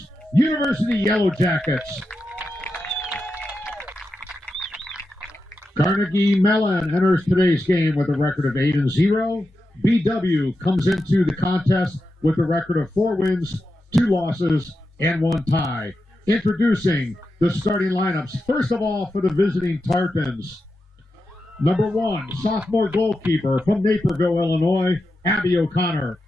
University Yellow Jackets. Carnegie Mellon enters today's game with a record of 8-0. BW comes into the contest with a record of 4 wins, 2 losses, and 1 tie. Introducing the starting lineups. First of all, for the visiting Tartans. Number 1, sophomore goalkeeper from Naperville, Illinois, Abby O'Connor.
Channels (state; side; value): normal; both; correlation 0.89